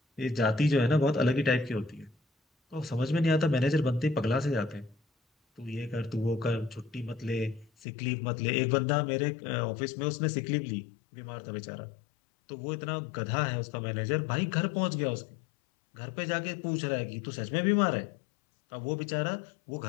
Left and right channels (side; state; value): right; drops out; at 7.7 s